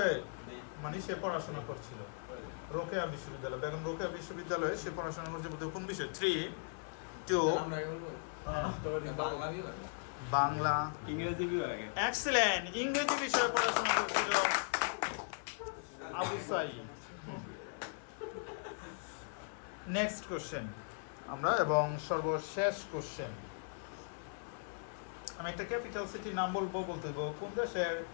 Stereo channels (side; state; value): right; silent; 52 dB below the other